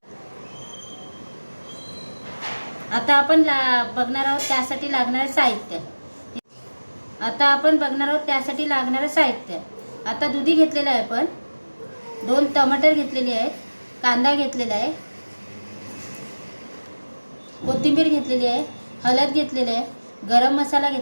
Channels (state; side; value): inverted; both; correlation -1.00